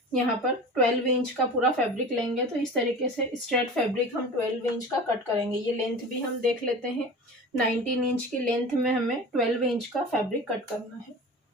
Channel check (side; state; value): both; normal; correlation 0.35